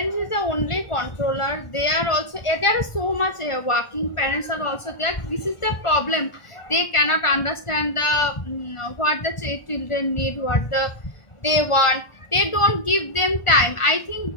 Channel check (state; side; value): late; right; 1.4 ms